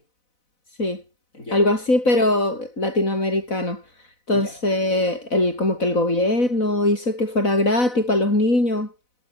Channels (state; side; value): late; right; 4.0 ms